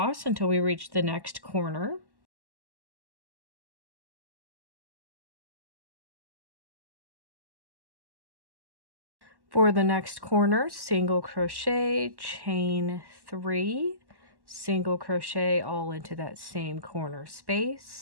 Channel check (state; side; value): late; left; 1.1 ms